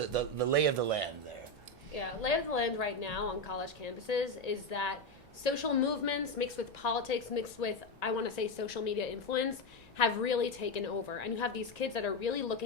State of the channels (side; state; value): both; normal; correlation 0.11